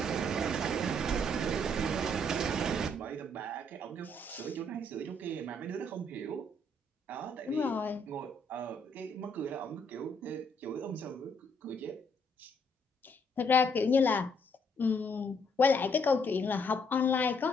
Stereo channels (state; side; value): normal; both; correlation 0.70